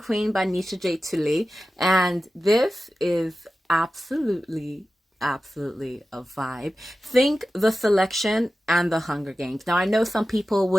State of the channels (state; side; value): normal; both; correlation 0.94